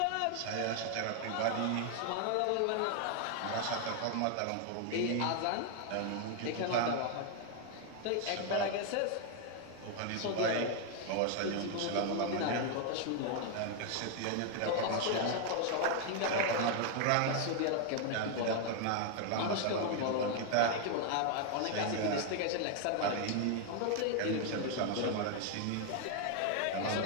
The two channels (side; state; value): both; different; correlation 0.00